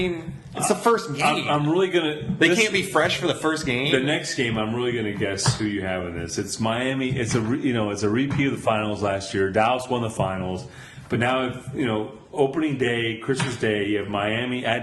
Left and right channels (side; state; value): both; identical; correlation 1.00